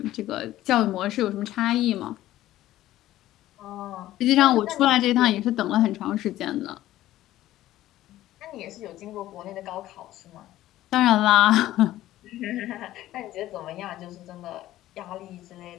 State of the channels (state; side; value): quieter; right; 14.6 dB